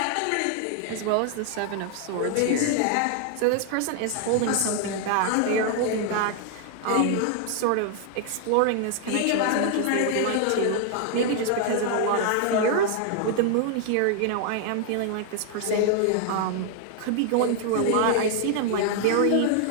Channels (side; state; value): both; different; correlation 0.00